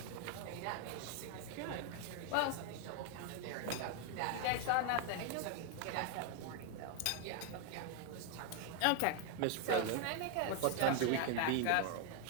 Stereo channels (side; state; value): both; different; correlation 0.01